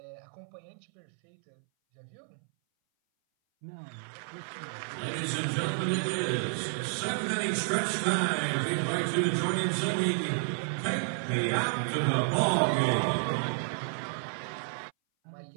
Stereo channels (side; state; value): left; silent; 57 dB below the other